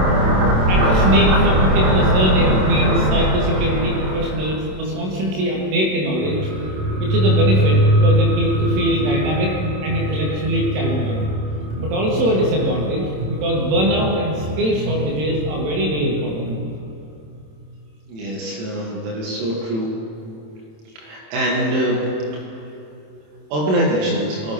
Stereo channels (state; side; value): late; left; 27 ms